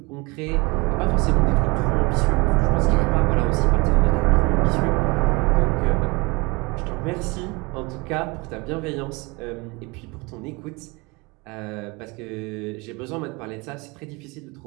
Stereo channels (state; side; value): quieter; left; 26.4 dB